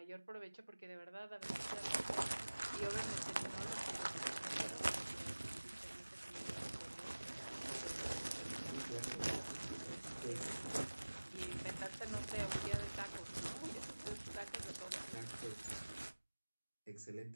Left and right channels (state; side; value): inverted; both; correlation -1.00